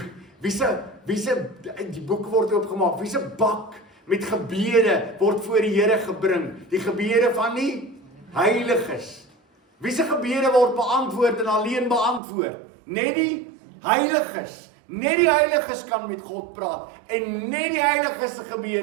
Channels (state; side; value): drops out; left; at 12.2 s